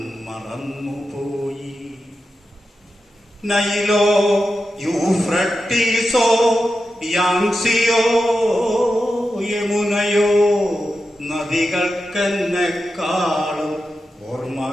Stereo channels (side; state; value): both; normal; correlation 0.90